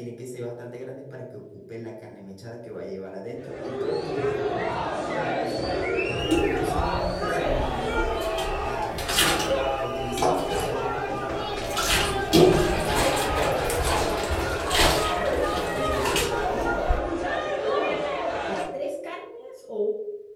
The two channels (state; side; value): identical; both; correlation 1.00